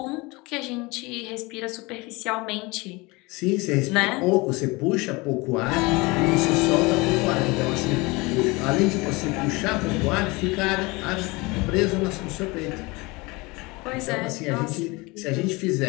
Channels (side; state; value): right; quieter; 24.7 dB